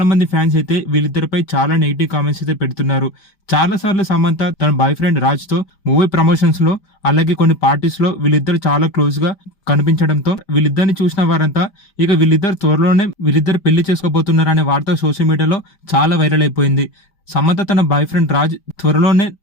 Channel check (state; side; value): late; right; 5.0 ms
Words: మంది ఫ్యాన్స్ అయితే వీళ్ళిద్దరిపై చాలా నెగిటివ్ కామెంట్స్ అయితే పెడుతున్నారు. చాలా సార్లు సమంత తన బాయ్ ఫ్రెండ్ రాజ్ తో మూవీ ప్రమోషన్స్ లో అలాగే కొన్ని పార్టీస్ లో వీళ్ళిద్దరు చాలా క్లోజ్ గా కనిపించడంతో వీళ్ళిద్దరిని చూసిన వారంతా ఇక వీళ్ళిద్దరు త్వరలోనే వీళ్ళిద్దరు పెళ్లి చేసుకోబోతున్నారనే వార్త సోషల్ మీడియాలో చాలా వైరల్ అయిపోయింది. సమంత తన బాయ్ ఫ్రెండ్ రాజ్ త్వరలోనే